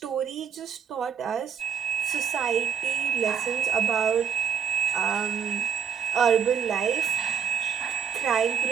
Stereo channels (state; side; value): quieter; left; 7.7 dB